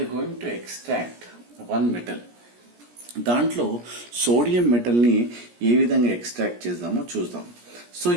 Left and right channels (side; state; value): left; late; 17 ms